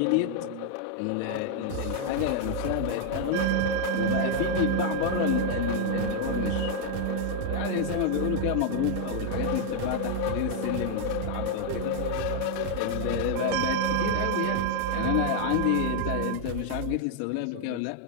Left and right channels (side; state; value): both; different; correlation 0.00